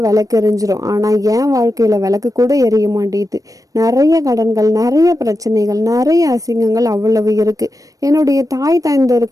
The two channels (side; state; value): left; late; 0.16 ms